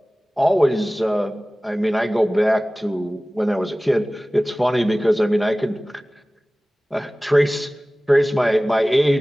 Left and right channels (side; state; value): both; normal; correlation 0.98